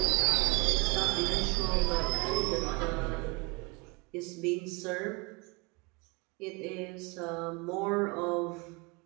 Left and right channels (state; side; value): quieter; left; 28.5 dB